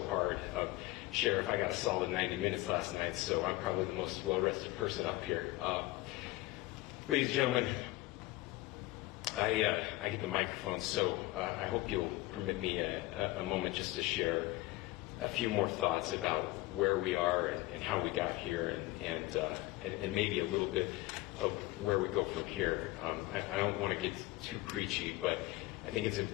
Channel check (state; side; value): quieter; right; 19.3 dB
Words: hard. Sheriff, I got a solid 90 minutes last night, so I'm probably the most well-rested person up here. Ladies and gentlemen, I hit the microphone, so I hope you'll permit me a moment just to share a few more thoughts about where we are and how we got here, and maybe a little bit of where we go from here. I don't want to get too preachy, but I think it's